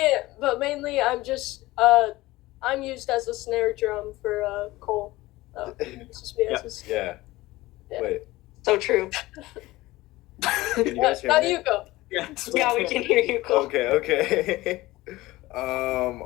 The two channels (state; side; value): quieter; right; 18.8 dB